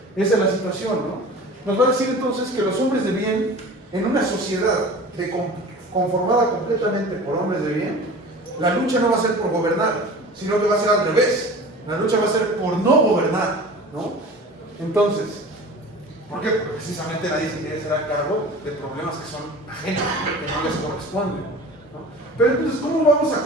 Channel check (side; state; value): both; normal; correlation 0.39